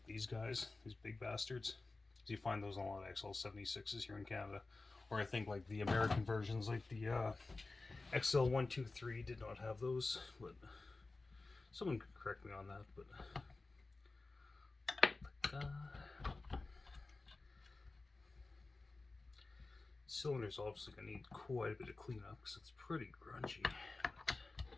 these guys, these big bastards. You find those on a lot of XL76s here in Canada. Or I think like the American versions, like the XL123 did not have those, but someone could correct me on that. But cylinder's obviously gonna need quite a bit of cleanup because it's pretty grungy.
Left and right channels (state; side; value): quieter; right; 3.4 dB